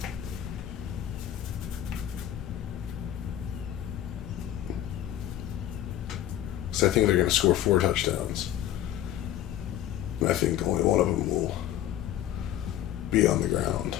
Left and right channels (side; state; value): right; quieter; 12.1 dB